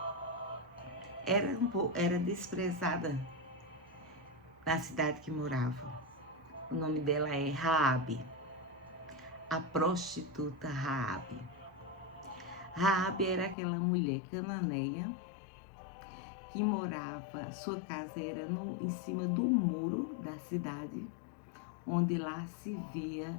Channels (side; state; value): right; drops out; at 13.6 s